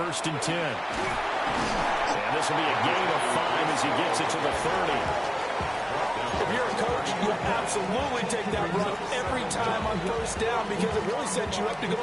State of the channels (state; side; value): identical; both; correlation 1.00